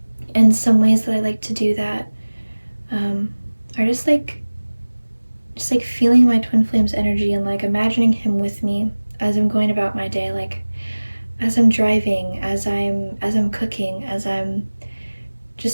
And some ways that I like to do that are just like feeling my twin flame's energy and like imagining him with me as I'm going about my day, like as I'm driving, as I'm cooking, as I'm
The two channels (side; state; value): both; inverted; correlation -1.00